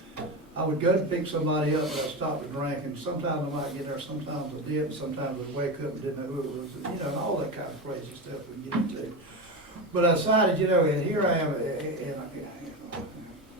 would go to pick somebody up, and I'd stop to drink, and sometimes I might get there, sometimes I didn't, sometimes I'd wake up and didn't know who it was, you know, and all that kind of crazy stuff we get into. But I decided, you know, and here I am in a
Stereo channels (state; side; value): normal; both; correlation 0.20